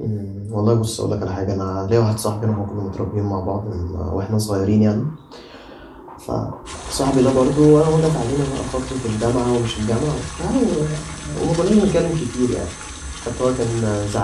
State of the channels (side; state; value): both; identical; correlation 1.00